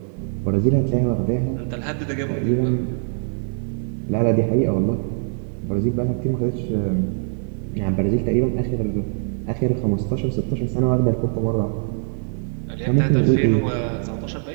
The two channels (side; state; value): left; silent; digital silence